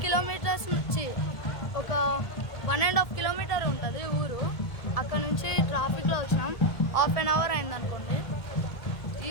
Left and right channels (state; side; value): late; right; 1.7 ms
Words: kilometers నుంచి ఒక 1.5 kilometer ఉంటుంది ఊరు. అక్కడ నుంచి ట్రాఫిక్లో వచ్చినాం. 1/2 hour అయింది అనుకోండి.